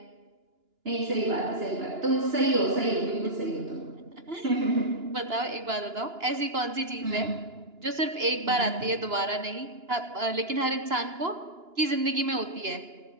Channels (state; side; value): late; left; 2.9 ms